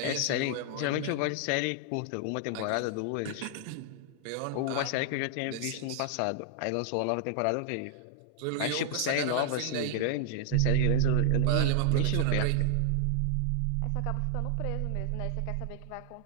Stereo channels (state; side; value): different; both; correlation 0.00